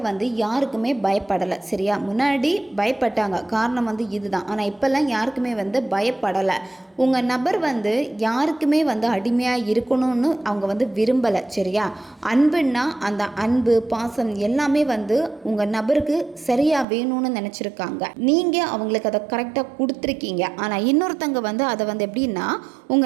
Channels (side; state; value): left; drops out; at 16.9 s